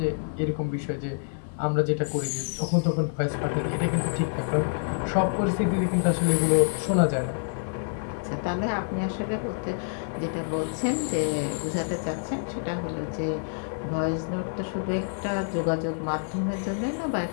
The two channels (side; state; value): right; silent; 60 dB below the other